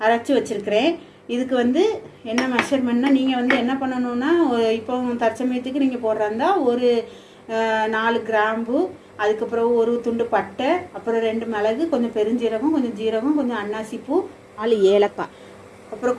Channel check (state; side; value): identical; both; correlation 1.00